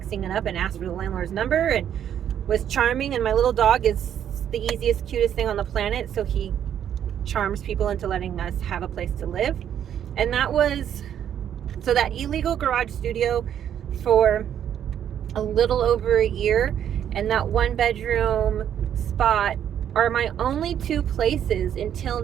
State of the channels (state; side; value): quieter; left; 9.7 dB